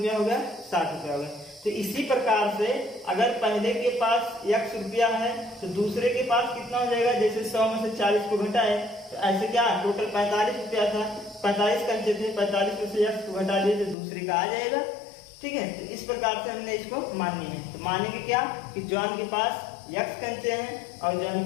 हो गया, 60 रुपया हो गया। तो इसी प्रकार से अगर पहले के पास x रुपया है, तो दूसरे के पास कितना हो जाएगा, जैसे 100 में से 40 को घटाए तो ऐसे क्या टोटल 45 रुपया था, 45 कंचे थे, 45 में से x को घटा दिए तो दूसरे का आ जाएगा। ठीक है, तो इस प्रकार से हमने इसको माननी है। तो मानेंगे क्या कि जॉन के पास x कंचे हैं और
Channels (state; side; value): drops out; right; at 14.0 s